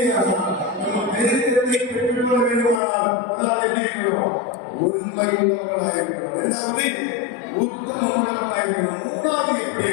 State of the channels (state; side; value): drops out; right; at 2.8 s